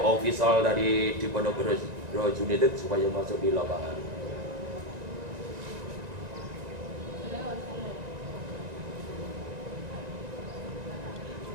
official dari Diponegoro United supaya masuk di lapangan.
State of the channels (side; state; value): left; late; 1.9 ms